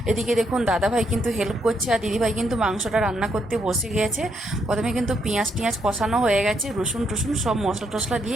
এদিকে দেখুন দাদাভাই কিন্তু হেল্প করছে, আর দিদিভাই কিন্তু মাংসটা রান্না করতে বসে গিয়েছে। প্রথমে কিন্তু পেঁয়াজ টিয়াজ কষানো হয়ে গেছে, রসুন টসুন সব মশলা টশলা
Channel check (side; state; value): both; normal; correlation 0.76